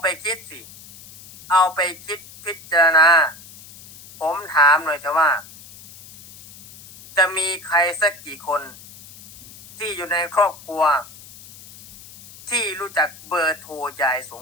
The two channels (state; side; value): noise; left; hiss, 19 dB below the sound